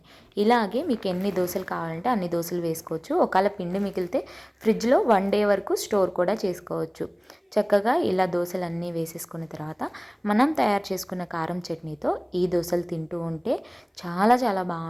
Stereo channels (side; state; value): both; identical; correlation 1.00